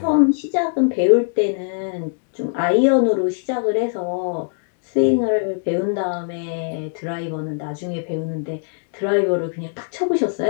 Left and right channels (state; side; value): silent; right; digital silence